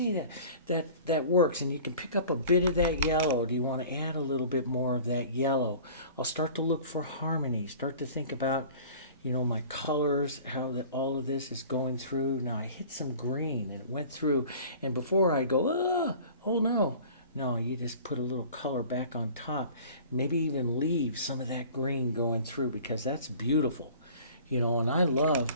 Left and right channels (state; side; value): inverted; both; correlation -0.44